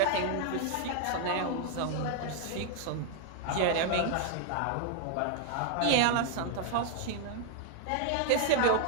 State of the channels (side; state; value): both; different; correlation 0.00